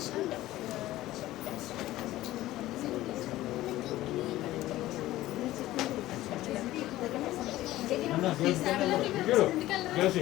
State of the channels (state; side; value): quieter; right; 15.8 dB